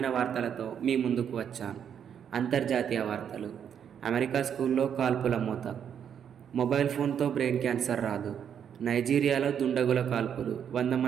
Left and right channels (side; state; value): left; quieter; 8.4 dB